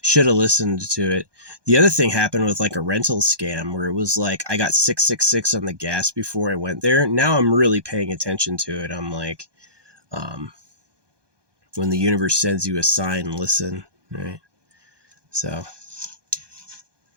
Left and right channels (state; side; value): late; left; 1.2 ms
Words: should have listened to it. The other thing happened with a rental scam where it was I got 666 on the gas before I went there. Now I'm really paying attention to it. I'm when the universe sends you a sign, listen, right? So